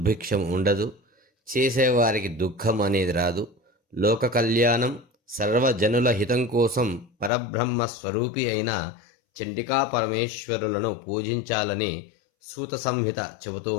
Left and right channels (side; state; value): right; drops out; at 7.3 s